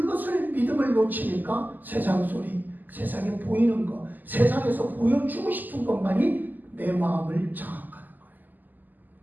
믿음을 놓치니까 세상 소리, 세상에 보이는 것, 세상에서 보여주고 싶은 것만이 내 마음을 장악하는 거예요.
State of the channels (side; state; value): left; late; 0.086 ms